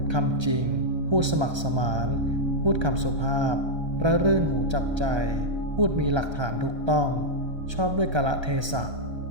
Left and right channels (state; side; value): late; left; 1.3 ms